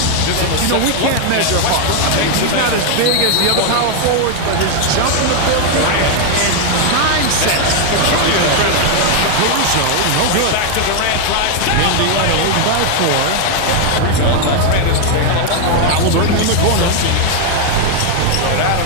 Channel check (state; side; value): different; both; correlation 0.00